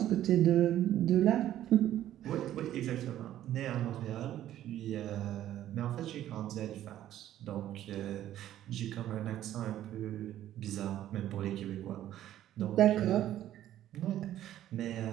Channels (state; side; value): quieter; left; 12.5 dB